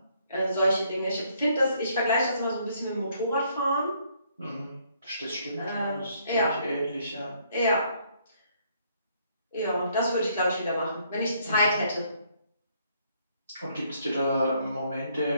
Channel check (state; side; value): inverted; both; correlation -0.68